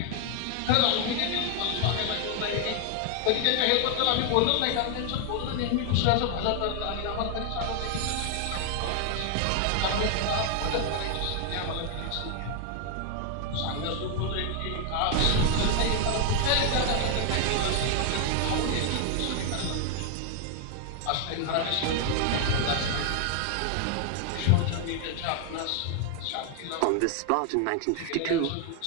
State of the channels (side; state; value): both; different; correlation 0.00